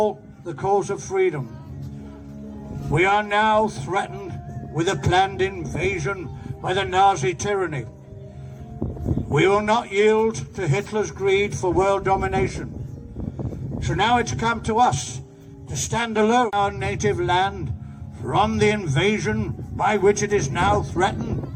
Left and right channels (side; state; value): both; identical; correlation 1.00